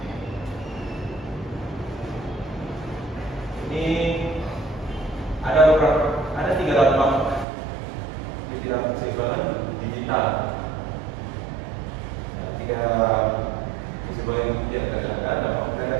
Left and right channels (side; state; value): left; drops out; at 7.5 s